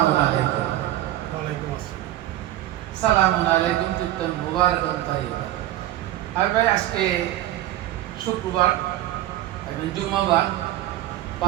আলাইকুম। ওয়ালাইকুম আসসালাম। সালামু আলাইকুম তিপ্তান মুবারাকান তাইয়্যিবা। আর ভাই আজকে শুক্রবার এবং জুম্মাবার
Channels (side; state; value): left; quieter; 14.3 dB